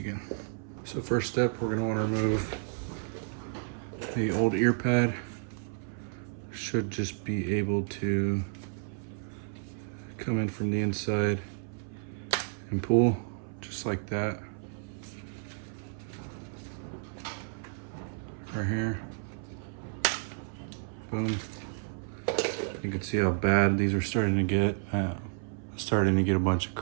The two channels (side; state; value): left; silent; 57 dB below the other